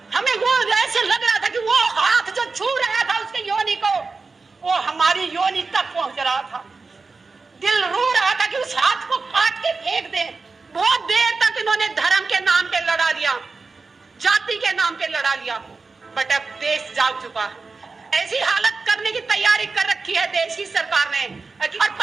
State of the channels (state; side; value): quieter; left; 4.2 dB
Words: हमें वो ऐसे लग रहा था कि वो हाथ जो छू रहा था उसके योनि को, वो हमारी योनि तक पहुंच रहा था। दिल रो रहा था कि उस हाथ को काट के फेंक दे। बहुत देर तक इन्होंने धर्म के नाम पे लड़ा लिया, जाति के नाम पे लड़ा लिया, बट अब देश जाग चुका है। ऐसी हालत करने की तैयारी कर रखी है देश की सरकार ने। और